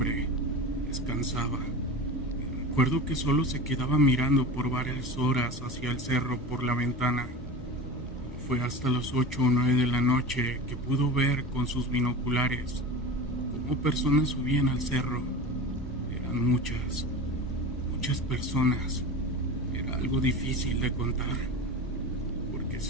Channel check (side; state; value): both; normal; correlation 0.30